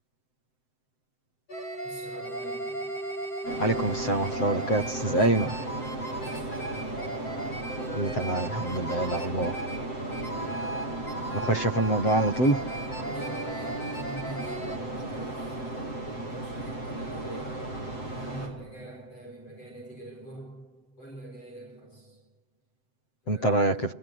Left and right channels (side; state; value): right; late; 7.8 ms